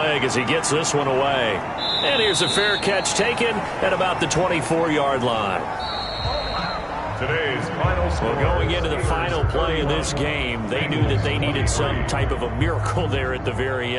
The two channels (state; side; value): identical; both; correlation 1.00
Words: as he gets this one away. And here's a fair catch taken at about the 24-yard line. Today's final score. Well, going into the final play in this game, they knew that they needed some type of a miracle there at the very